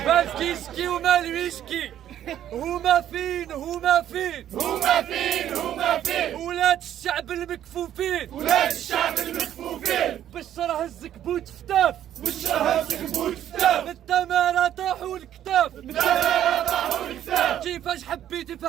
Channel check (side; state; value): left; quieter; 11.2 dB